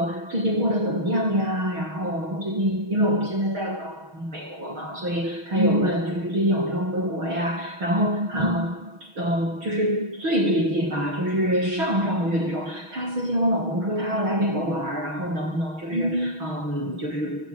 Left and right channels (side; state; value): left; late; 6.3 ms